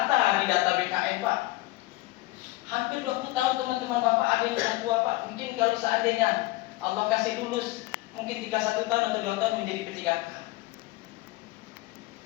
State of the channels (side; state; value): right; quieter; 19.3 dB